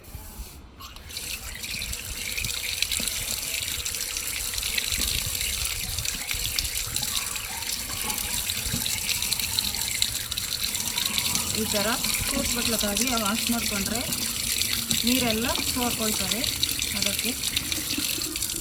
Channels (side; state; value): both; identical; correlation 1.00